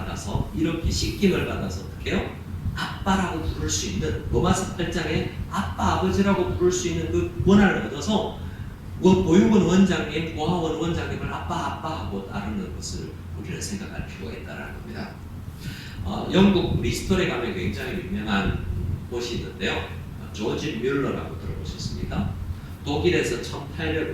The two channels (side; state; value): both; identical; correlation 1.00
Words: 이렇게 씻김을 받아서 어떻게 해요? 아빠라고 부를 수 있는 로마서 8장에 아빠 아버지라고 부를 수 있는 그 권한을 얻어서 보육원 원장님, 고아원 원장님을 아빠 하고 따르는 것을 우리는 생각할 필요가 있다는 겁니다. 영국 리스톨에 가면 굉장히 유명한 곳이 있는데요. 조지 뮬러라고 들어보셨습니까? 독일에서